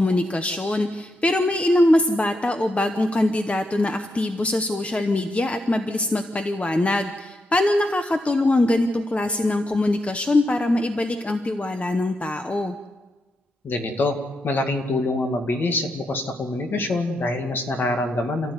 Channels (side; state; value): both; normal; correlation 0.83